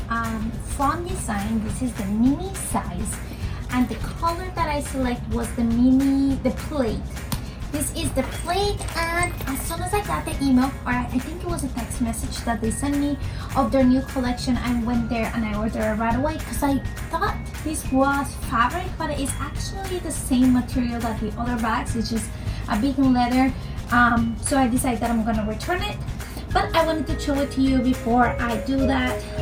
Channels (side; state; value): both; identical; correlation 1.00